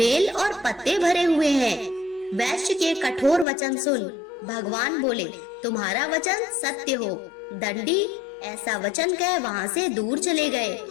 और पत्ते भरे हुए हैं। वैश्य के कठोर वचन सुन भगवान बोले, तुम्हारा वचन सत्य हो। दंडी ऐसा वचन कह वहाँ से दूर चले गए।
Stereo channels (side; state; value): right; drops out; at 3.5 s